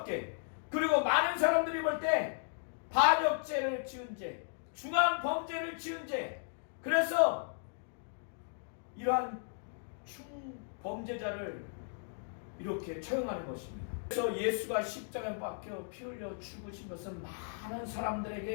그리고 많은 사람들이 볼 때 반역죄를 지은 죄, 중한 범죄를 지은 죄, 그래서 이러한 충범죄자를 이렇게 처형하는 것입니다. 그래서 예수가 십자가에 박혀 피 흘려 죽으신 것은 많은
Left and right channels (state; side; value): silent; right; digital silence